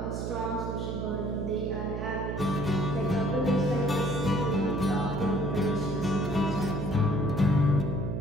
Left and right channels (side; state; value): right; noise; hum, 3 dB below the sound